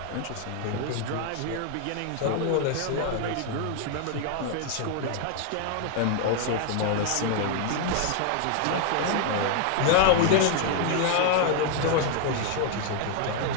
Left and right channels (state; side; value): different; both; correlation 0.00